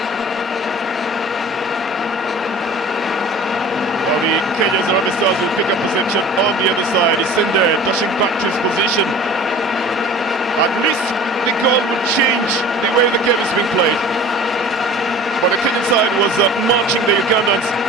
Well, the Kenya's Harambee Stars will pick up possession on the other side. Isinde dashing back to his position. At least the goal would change the way the game is being played. But the Kenyan side was marching the Ugandans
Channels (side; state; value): both; normal; correlation 0.42